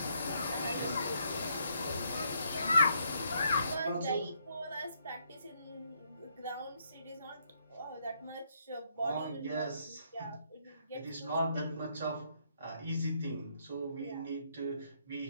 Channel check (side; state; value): both; inverted; correlation -0.73